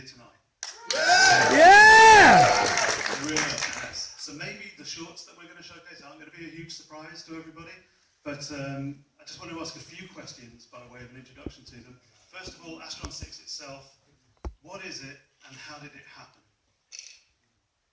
tonight. Yeah! Really nice. So maybe the shorts that we're going to showcase aren't going to be a huge surprise to everybody, but I just want to ask a few questions by way of an introduction to them. First of all, Astron-6 itself, what is it and how did it happen?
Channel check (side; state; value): both; identical; correlation 1.00